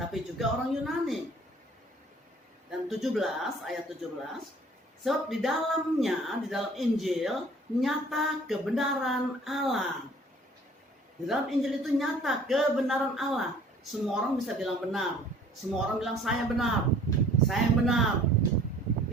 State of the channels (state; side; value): normal; both; correlation 0.52